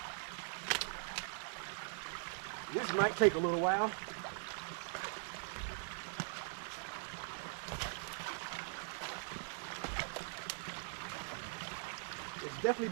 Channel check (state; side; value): silent; left; digital silence